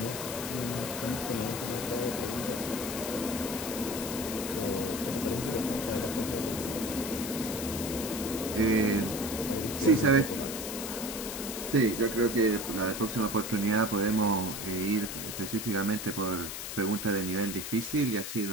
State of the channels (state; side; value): noise; left; hiss, 6 dB below the sound